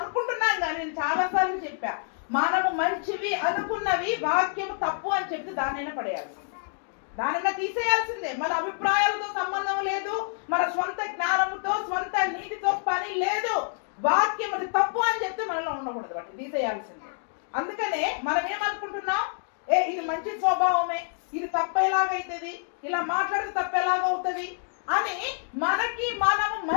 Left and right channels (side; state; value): right; silent; digital silence